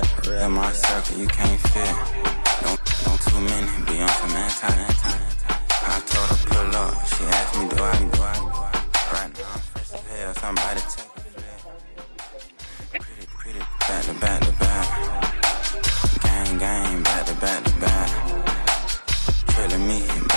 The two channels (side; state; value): both; inverted; correlation -1.00